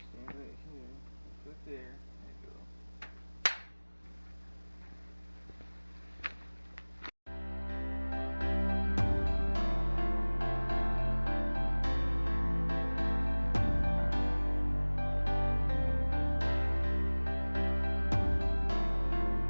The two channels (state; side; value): inverted; both; correlation -1.00